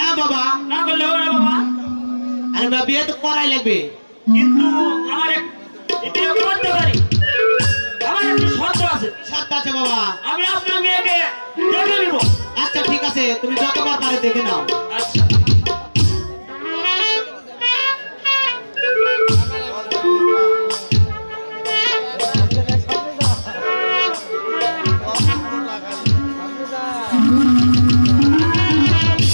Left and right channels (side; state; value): both; inverted; correlation -1.00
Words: বাবা। না করলে হবে না বাবা। আরে বাবা, বিয়ে তো করাই লাগবে। কিন্তু আমার বিয়ে করতে পারি, আমার একটি শর্ত আছে। সত্য আছে বাবা। আমি আপনার মেয়েকে দেখে নিব। আচ্ছা ঠিক আছে, তুমি যতবার পারে দেখে নাও। আচ্ছা।